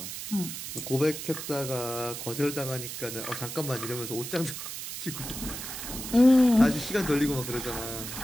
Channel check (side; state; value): right; noise; hiss, 7 dB below the sound